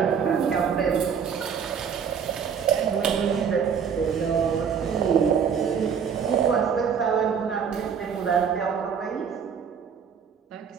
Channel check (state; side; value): quieter; left; 7.0 dB